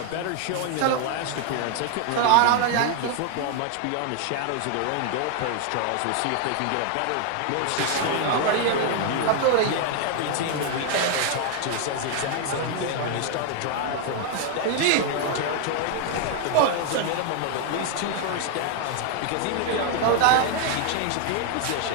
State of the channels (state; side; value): different; both; correlation 0.00